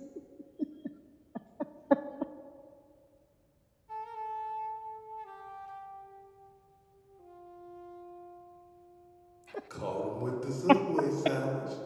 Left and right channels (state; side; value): identical; both; correlation 1.00